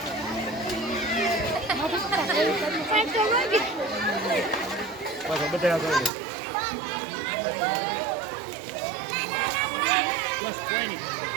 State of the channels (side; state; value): left; drops out; at 6.1 s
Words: બસ બધા બસ કોઈ નહીં